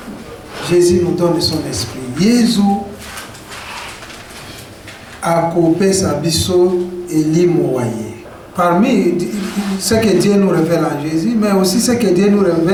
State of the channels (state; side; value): identical; both; correlation 1.00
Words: Jésus nous donne son esprit. Jésus a coupé sa biseau et l'imoyer. Parmi ce que Dieu nous révèle en Jésus, mais aussi ce que Dieu nous